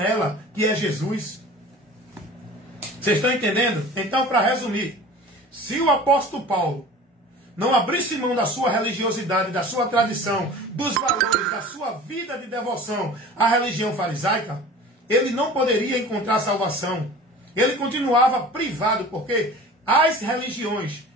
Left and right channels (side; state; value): both; normal; correlation 0.40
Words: que é Jesus. Vocês estão entendendo? Então, para resumir, se o apóstolo Paulo não abrisse mão da sua religiosidade, da sua tradição, dos valores, da sua vida de devoção à religião farisaica, ele não poderia encontrar salvação. Ele continuava privado, porque as religiões